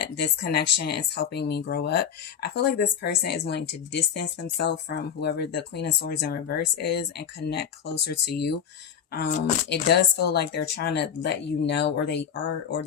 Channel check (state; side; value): quieter; right; 8.1 dB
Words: this connection is helping me grow up. I feel like this person is wanting to distance themselves from whoever the Queen of Swords in reverse is and connect closer to you. It does feel like they're trying to let you know, or